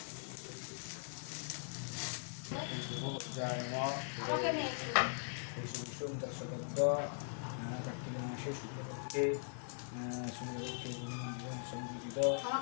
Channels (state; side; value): silent; right; 51 dB below the other